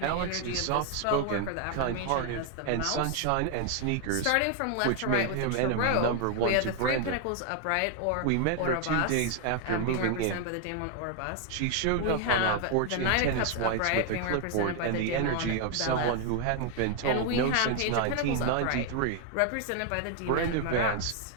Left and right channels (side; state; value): both; different; correlation 0.00